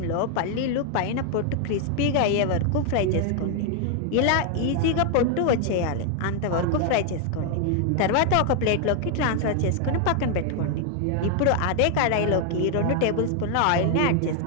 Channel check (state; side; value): different; both; correlation 0.00